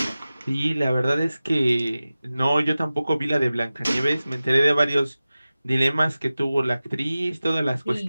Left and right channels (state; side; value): inverted; both; correlation -0.96